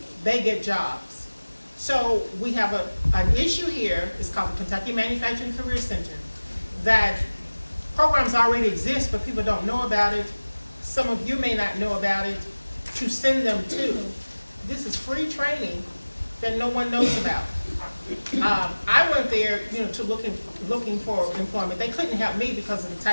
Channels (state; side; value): inverted; both; correlation -1.00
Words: they get jobs. So we have an issue here, it's called the Kentucky Manufacturing Career Center, that programs already exist, but people don't know about it. Some of you may not know about it, to send them to. This is free training that no one knows about. I went there, to looking for employment. They couldn't help me because of the